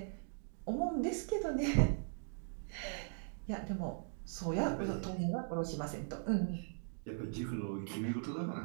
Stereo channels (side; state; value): left; silent; digital silence